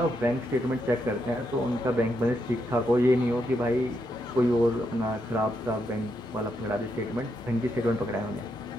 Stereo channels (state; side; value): normal; both; correlation 0.80